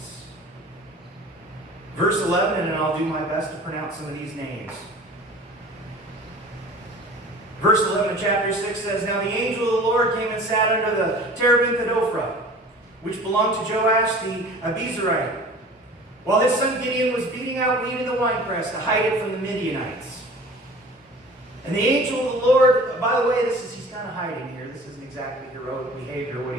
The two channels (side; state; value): both; normal; correlation 0.43